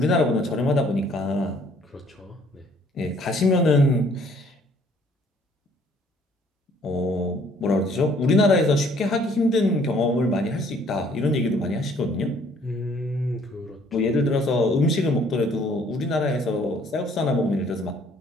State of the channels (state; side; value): normal; both; correlation 0.60